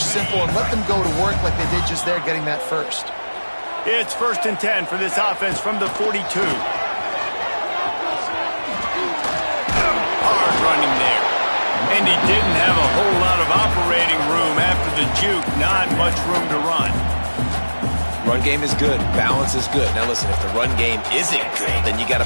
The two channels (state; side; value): inverted; both; correlation -1.00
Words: simple, and let them go to work like they did just there, getting that first. It's 1st and 10 for this offense from the 42. Hard running there. And he didn't have a whole lot of operating room after the juke. Not much room to run. Run game is good. Balance is good. Now, listen, if the run game isn't good, then you got